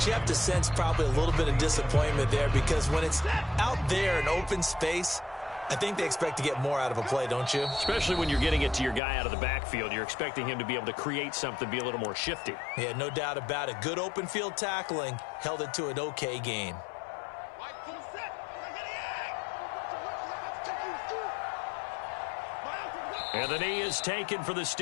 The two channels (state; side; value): drops out; right; at 9.0 s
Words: you have to sense probably a little bit of disappointment there, because when it's out there in open space, I think they expect to get more out of a play, don't you? Especially when you're getting it to your guy out of the backfield. You're expecting him to be able to create something, be a little more shifty. Yeah, no doubt about it. Good open field tackling held it to an okay gain. And the knee is taken for the